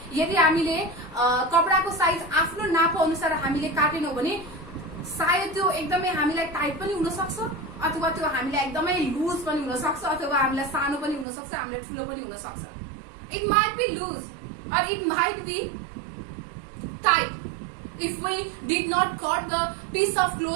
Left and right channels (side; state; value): left; drops out; at 11.2 s